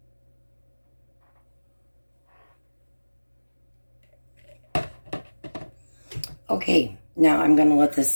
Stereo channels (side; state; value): both; inverted; correlation -1.00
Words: Okay, now I'm going to let this